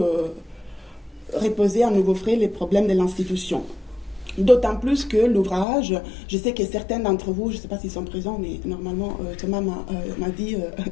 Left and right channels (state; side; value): drops out; right; at 5.7 s